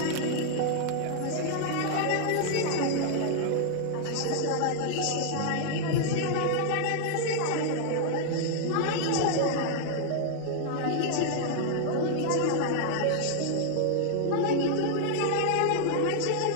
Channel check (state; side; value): different; both; correlation -0.01